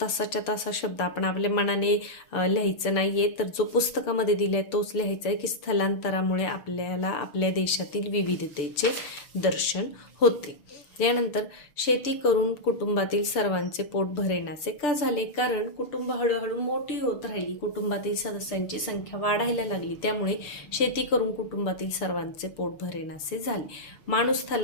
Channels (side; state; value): right; late; 6.8 ms